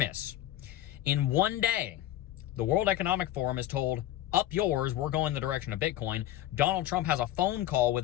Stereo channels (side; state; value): right; quieter; 13.7 dB